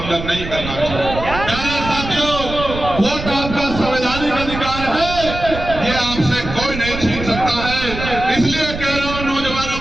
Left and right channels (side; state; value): right; noise; rumble, 8 dB below the sound